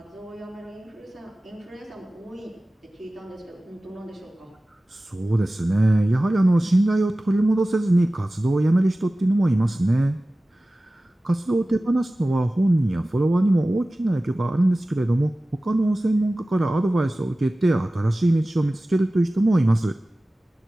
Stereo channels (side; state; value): both; normal; correlation 0.97